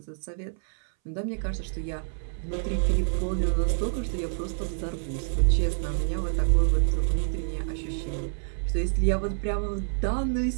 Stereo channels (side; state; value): left; silent; 60 dB below the other